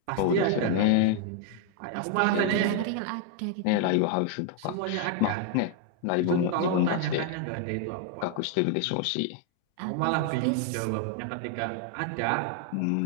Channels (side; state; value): both; different; correlation 0.00